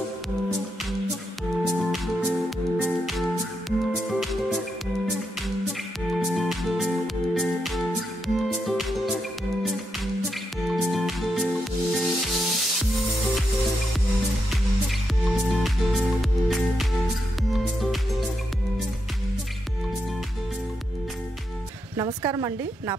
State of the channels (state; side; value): normal; both; correlation 0.83